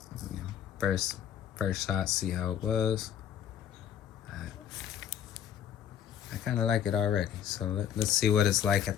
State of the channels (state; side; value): quieter; right; 9.5 dB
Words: You know, first shot, see how it was. I kind of like it already, so let's see what it's like at